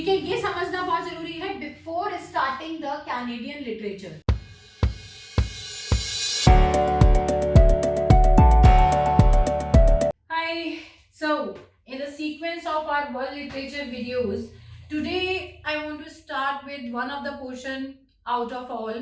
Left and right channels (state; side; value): identical; both; correlation 1.00